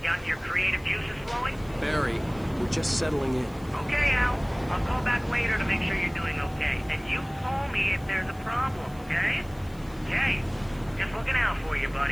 gotten your creative juices flowing? Barry, we're just settling in. Okay, Al. I'll call back later to make sure you're doing okay. And you call me if there's a problem, okay? Okay. Just looking out for you,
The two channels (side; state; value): left; noise; hiss, 25 dB below the sound